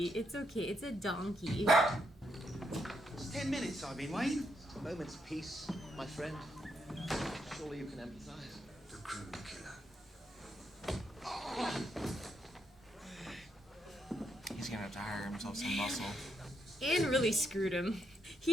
it's okay. It's a donkey. It's 10 minutes I've been waiting. A moment's peace, my friend. Surely you can empathize. The crew killer. He's gonna have to hire himself some muscle. And really screwed him.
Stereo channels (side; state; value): both; normal; correlation 0.78